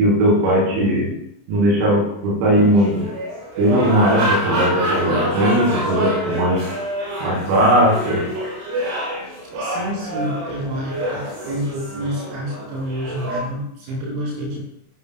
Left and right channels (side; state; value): left; late; 30 ms